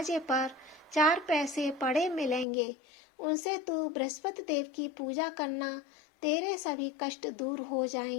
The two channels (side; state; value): right; drops out; at 2.5 s